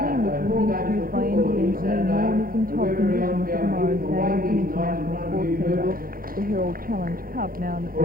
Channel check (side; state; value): left; late; 0.42 ms